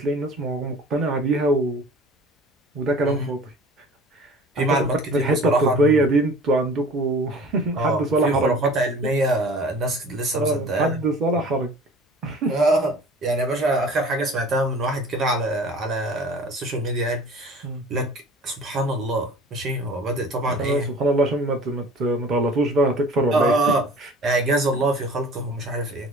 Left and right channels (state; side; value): normal; both; correlation 0.45